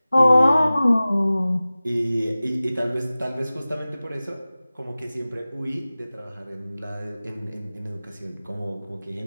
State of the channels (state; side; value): inverted; both; correlation -0.97